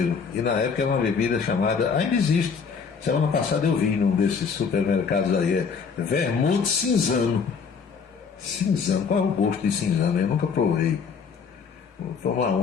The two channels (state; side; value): quieter; right; 5.8 dB